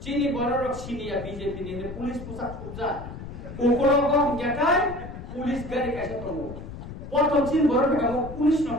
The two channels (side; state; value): left; noise; rumble, 11 dB below the sound